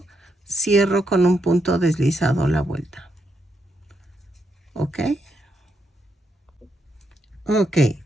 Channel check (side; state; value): both; normal; correlation 0.80